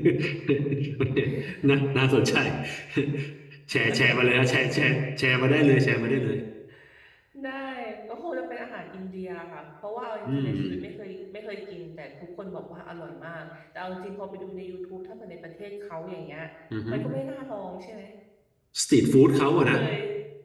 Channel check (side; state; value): both; identical; correlation 1.00